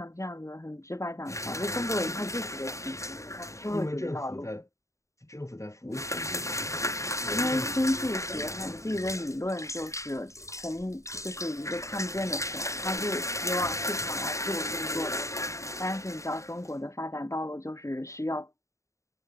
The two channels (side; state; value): right; late; 0.15 ms